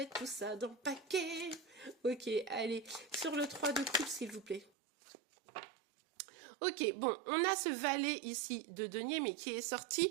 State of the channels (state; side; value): drops out; left; at 4.7 s